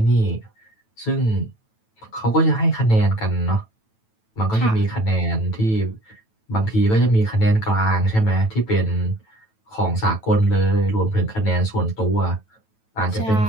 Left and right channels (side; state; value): right; late; 9.1 ms